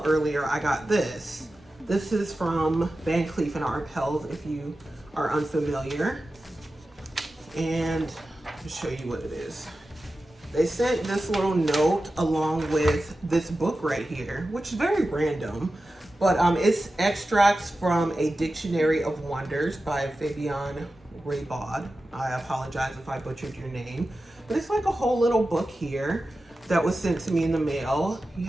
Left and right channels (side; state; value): both; normal; correlation 0.93